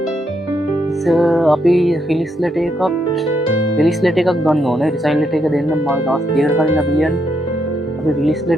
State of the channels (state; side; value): normal; both; correlation 0.78